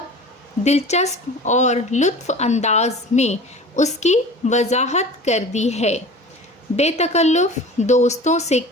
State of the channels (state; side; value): normal; both; correlation 0.39